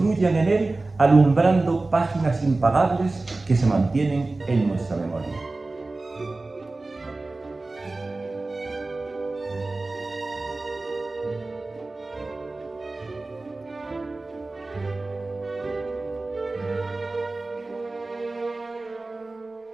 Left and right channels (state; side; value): quieter; left; 3.2 dB